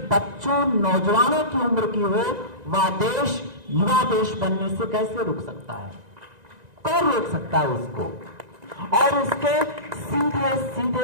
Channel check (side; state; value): left; late; 1.9 ms